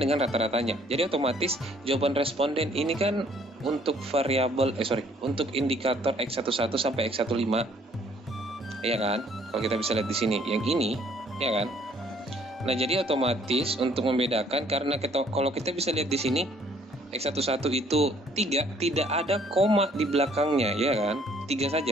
rata-ratanya. Jadi otomatis jawaban responden ini kan untuk variabel untuk indikator X11 sampai X15. Ya kan? Kalau kita bisa lihat di sini yang ini, ya kan? Nah, jadi otomatis untuk membedakan, karena kalau kita bisa lihat di sini X11 itu 3, tidak ada koma di belakangnya, ya kan? 3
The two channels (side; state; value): both; normal; correlation 0.61